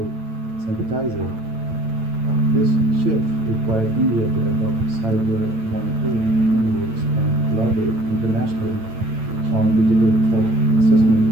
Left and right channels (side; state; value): left; late; 8.9 ms